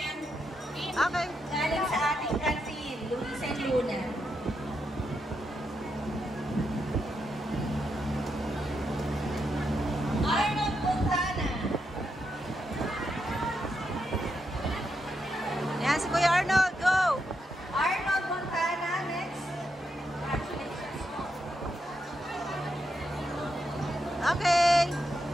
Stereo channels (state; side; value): normal; both; correlation 0.83